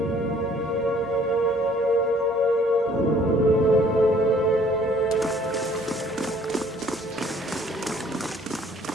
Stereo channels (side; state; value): both; normal; correlation 0.58